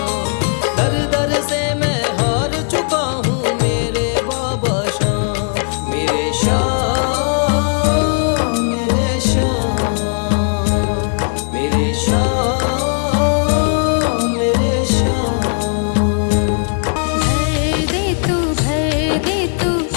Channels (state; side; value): silent; right; 59 dB below the other